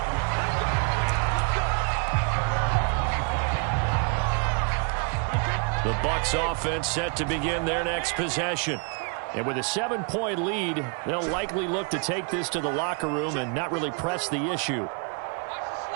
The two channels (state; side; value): quieter; left; 36.9 dB